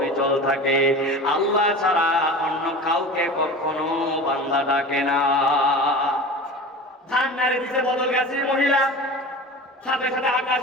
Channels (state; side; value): normal; both; correlation 0.34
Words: থাকে। আল্লাহ ছাড়া অন্য কাউকে কখনো বান্দা ডাকে না। ধান নাড়ে দিতে বদল গেছে মহিলা, সাথে সাথে